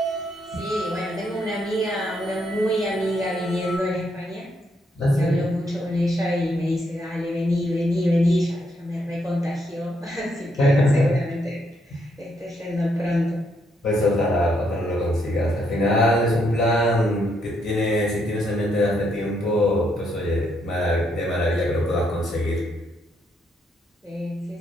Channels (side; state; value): both; normal; correlation 0.75